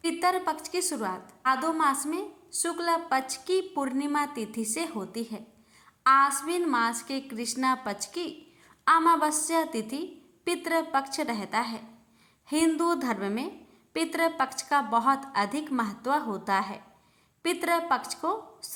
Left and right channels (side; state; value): both; identical; correlation 1.00